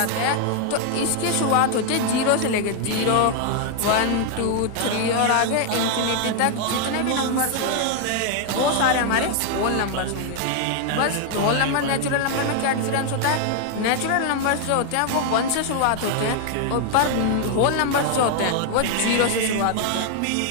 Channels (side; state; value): both; different; correlation 0.00